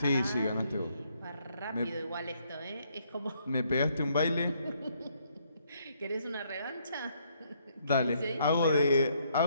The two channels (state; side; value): inverted; both; correlation -0.70